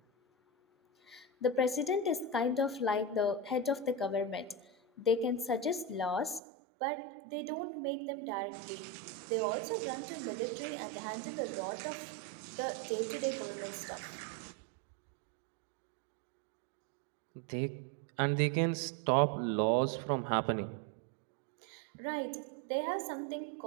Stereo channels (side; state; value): left; drops out; at 6.4 s